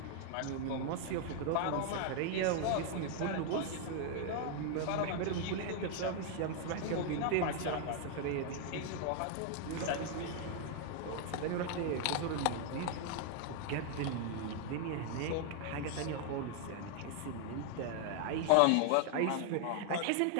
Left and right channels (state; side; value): different; both; correlation 0.00